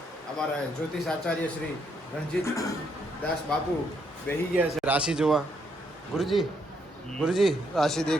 અમારા જ્યોતિષ આચાર્ય શ્રી રણજીત દાસ બાપુ બેહી ગયા છે રાશિ જોવા. ગુરુજી ગુરુજી રાશિ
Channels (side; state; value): both; normal; correlation 0.74